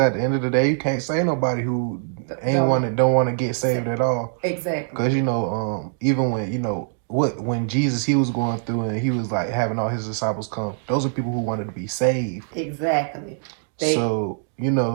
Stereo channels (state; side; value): silent; left; digital silence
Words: the end of the day, you can't say nobody who don't want to get saved at all. Exactly. Because even when when Jesus he was going through and he was like having all his disciples come, those are people who wanted to be saved. Exactly. So